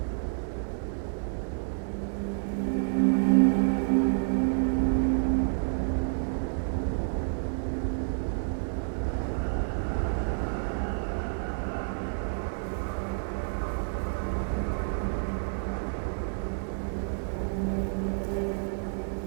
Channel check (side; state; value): left; silent; digital silence